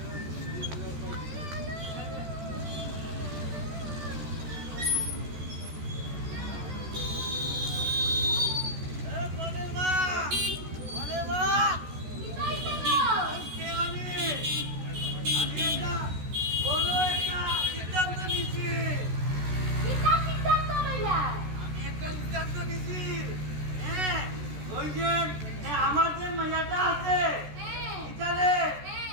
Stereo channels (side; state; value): left; late; 14 ms